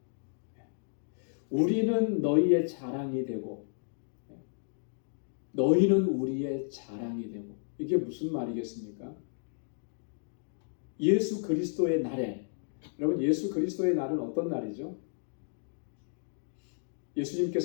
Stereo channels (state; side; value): silent; right; digital silence